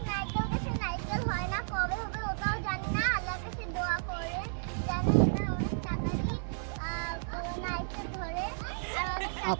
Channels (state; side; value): silent; left; digital silence